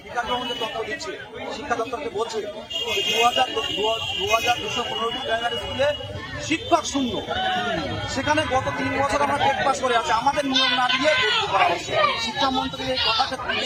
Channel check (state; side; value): identical; both; correlation 1.00